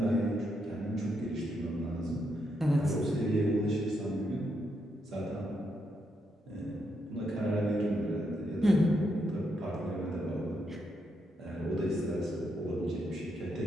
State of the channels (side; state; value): both; normal; correlation 0.80